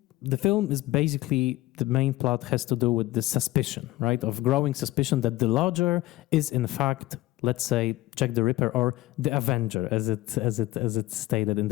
the film is basically, the main plot has to do with the suspicion, right? Of growing suspicion that the lodger is in fact, let's say, Jack the Ripper or the Avenger, as it's stated in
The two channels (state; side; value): quieter; right; 17.6 dB